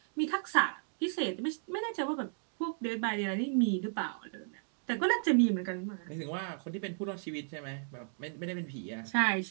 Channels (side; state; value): left; silent; digital silence